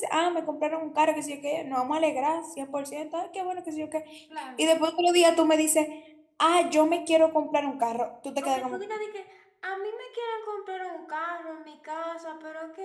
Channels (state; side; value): identical; both; correlation 1.00